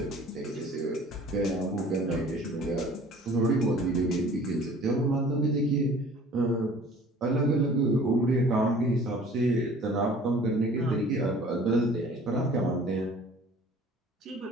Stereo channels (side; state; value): both; normal; correlation 0.49